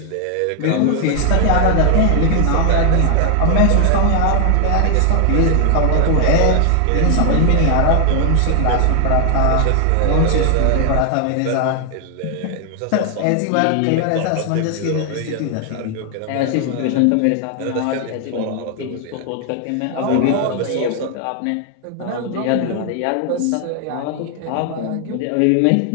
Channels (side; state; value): both; different; correlation 0.00